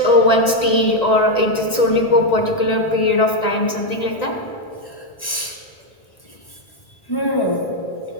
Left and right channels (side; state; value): right; late; 1.9 ms